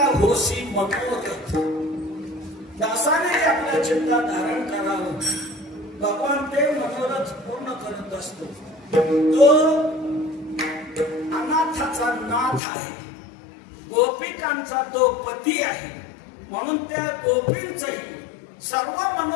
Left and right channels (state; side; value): drops out; right; at 12.6 s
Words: होसी मनोरथ. दासाने आपल्या चित्तात धारण करावं, भगवान ते मनोरथ पूर्ण करत असतो. तो अनाथाचा नाथ आहे, गोपिकांचा तो पती आहे, म्हणून त्या गोपींचही सर्व